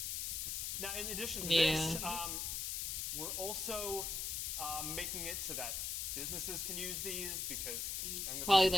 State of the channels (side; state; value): left; noise; hiss, 1 dB below the sound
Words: Now, in addition to this, we're also making it so that businesses can use these, because probably